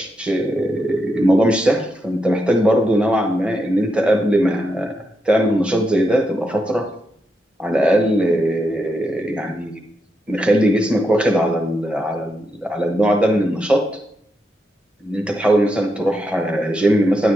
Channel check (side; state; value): both; normal; correlation 0.83